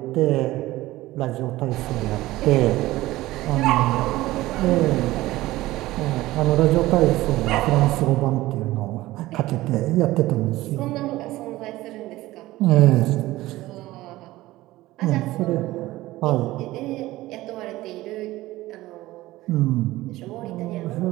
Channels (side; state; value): left; quieter; 17.4 dB